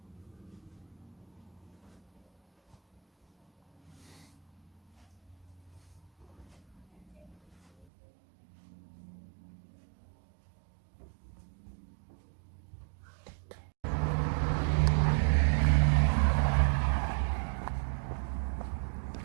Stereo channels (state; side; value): drops out; left; at 7.9 s